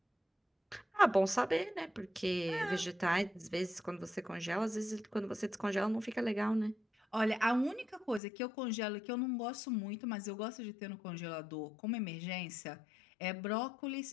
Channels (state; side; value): drops out; right; at 8.2 s